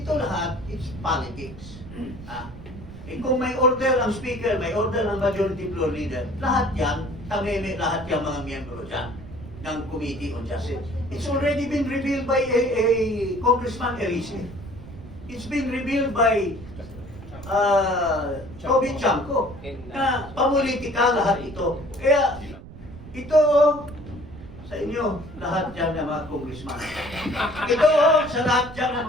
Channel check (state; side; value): noise; right; rumble, 15 dB below the sound